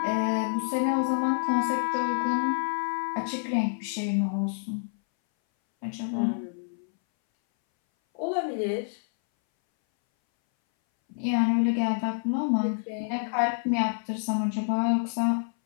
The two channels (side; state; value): right; silent; 59 dB below the other